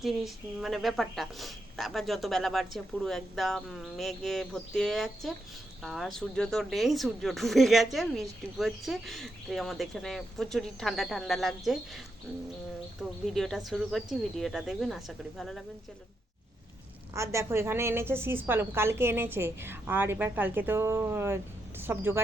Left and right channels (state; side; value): normal; both; correlation 0.82